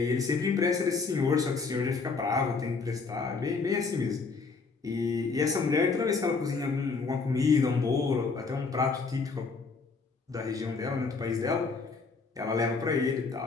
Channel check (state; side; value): quieter; right; 4.5 dB